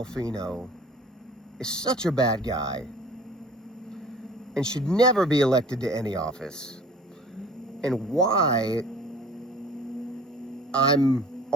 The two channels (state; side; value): normal; both; correlation 0.47